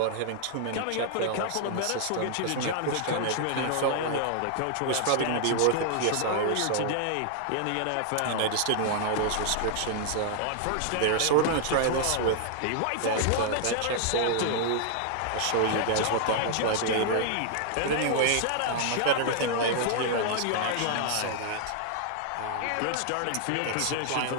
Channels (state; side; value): different; both; correlation 0.00